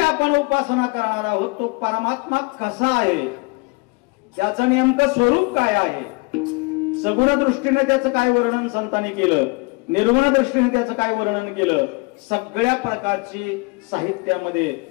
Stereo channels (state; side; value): quieter; right; 28.2 dB